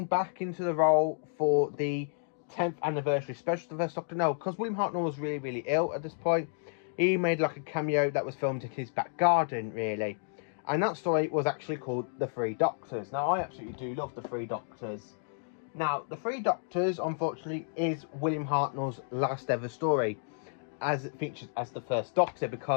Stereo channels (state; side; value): silent; right; digital silence